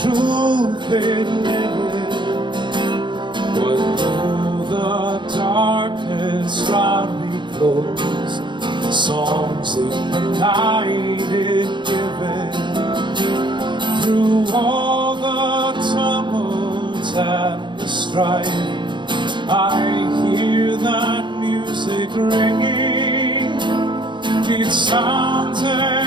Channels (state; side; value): late; left; 0.23 ms